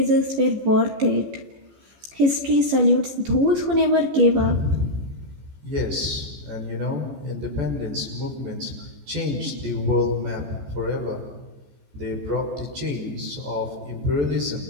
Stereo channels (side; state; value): left; late; 14 ms